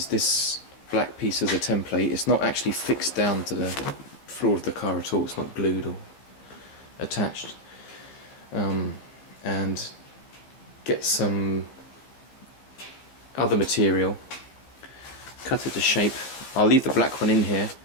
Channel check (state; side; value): late; right; 15 ms